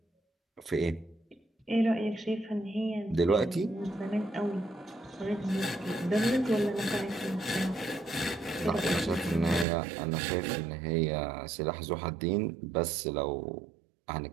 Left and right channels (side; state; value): left; drops out; at 9.7 s